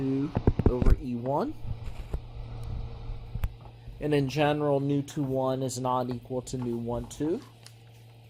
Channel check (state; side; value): identical; both; correlation 1.00